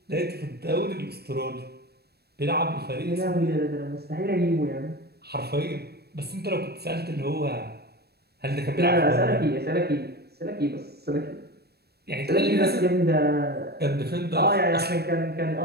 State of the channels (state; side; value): late; left; 0.47 ms